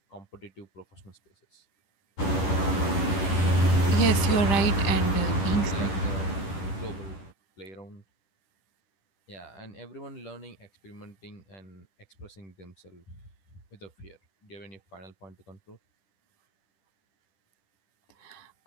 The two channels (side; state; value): right; late; 11 ms